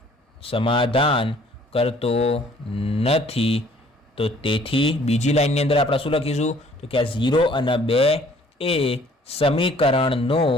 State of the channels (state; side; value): normal; both; correlation 0.57